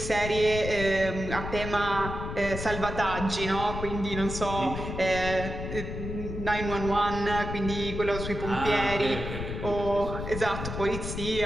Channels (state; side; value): noise; left; rumble, 6 dB below the sound